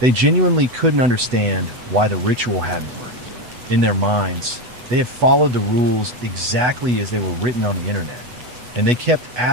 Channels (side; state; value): left; late; 8.1 ms